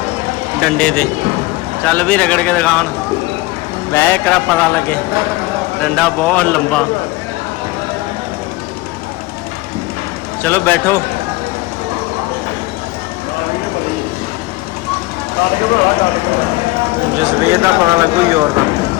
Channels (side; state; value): right; quieter; 20.8 dB